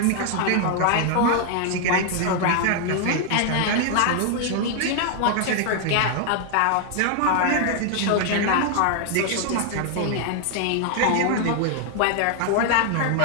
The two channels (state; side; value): different; both; correlation 0.00